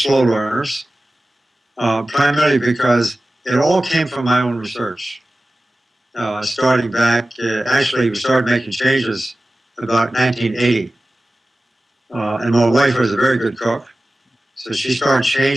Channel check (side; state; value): both; normal; correlation 0.96